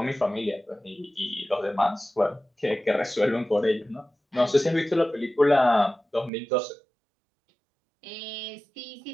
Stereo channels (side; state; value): left; drops out; at 6.3 s